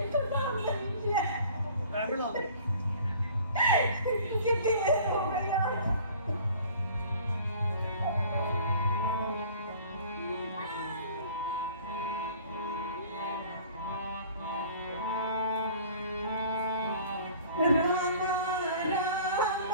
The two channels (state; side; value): inverted; both; correlation -0.49